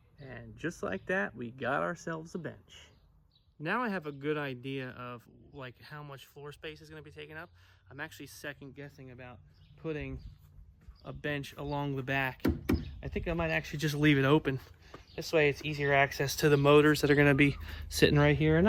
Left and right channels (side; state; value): both; identical; correlation 1.00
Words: And just like that, we got ourselves a bench. Now I have a good idea of like how much floor space is going to be taken up. I'm actually second guessing about putting a bench along the back. I think I might actually just leave it open. This way it's easier access to the motors that are going to be sitting right here. And